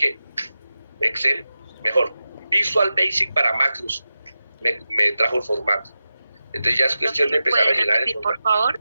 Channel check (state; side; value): inverted; both; correlation -0.93